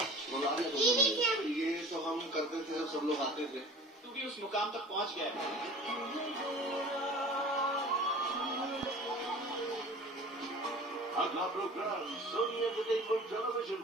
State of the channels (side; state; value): both; normal; correlation 0.42